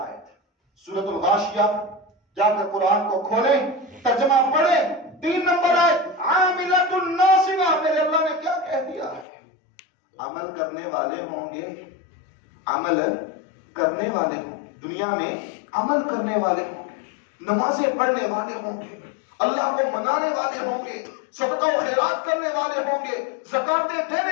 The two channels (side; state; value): right; drops out; at 9.2 s